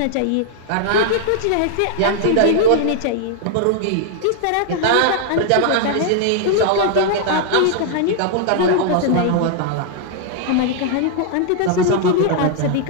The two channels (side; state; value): both; different; correlation -0.01